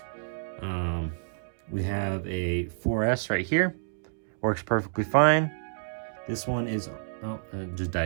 We have a 4S right here, works perfectly fine. This one is, it just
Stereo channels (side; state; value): left; silent; digital silence